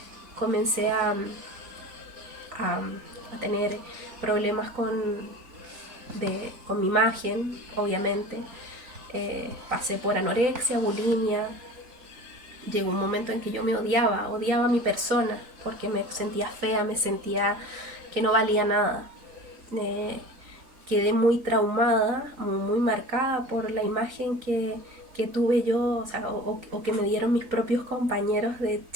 Comencé a tener problemas con mi imagen, obviamente. Pasé por anorexia, bulimia. Llegó un momento en que yo me odiaba a mi persona, porque me sentía fea, me sentía que no valía nada. Quedé muy traumada, muy marcada por la imagen que tuve yo, o sea, o que me dieron mis propios compañeros de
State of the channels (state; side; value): late; left; 3.9 ms